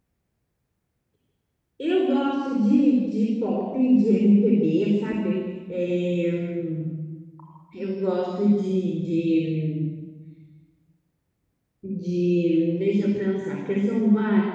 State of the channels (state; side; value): identical; both; correlation 1.00